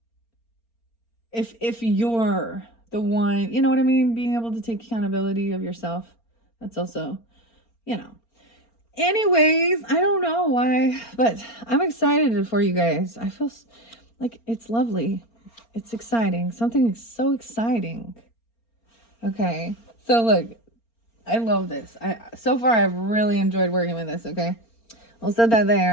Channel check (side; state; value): right; late; 4.3 ms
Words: If you're the one, you know what I mean? Being able to take accountability of yourself. That's also, you know. Anyways, I don't know why, but I'm excited for you guys. I feel like it's lovely. It's exciting. Something so exciting. Okay. So look, I love this. So far I've really enjoyed working with this, okay? I'll set that